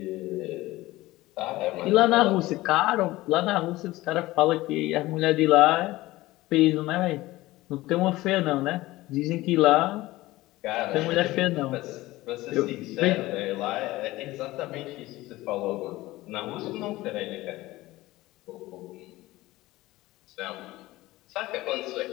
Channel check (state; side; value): quieter; right; 18.3 dB